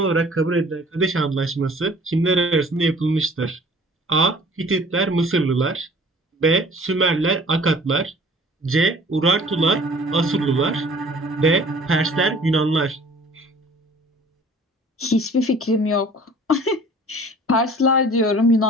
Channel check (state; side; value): normal; both; correlation 0.50